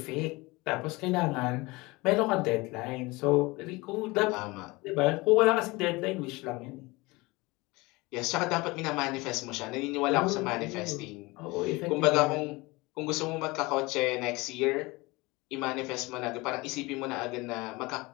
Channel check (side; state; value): right; quieter; 23.2 dB